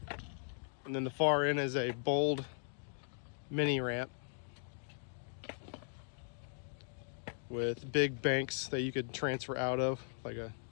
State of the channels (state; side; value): silent; right; digital silence